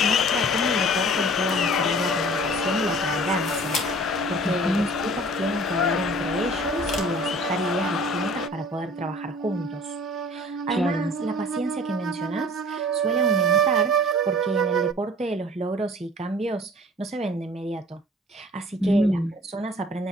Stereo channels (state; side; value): normal; both; correlation 0.47